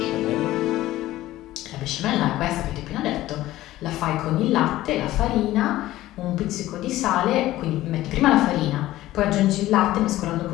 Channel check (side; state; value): right; quieter; 15.6 dB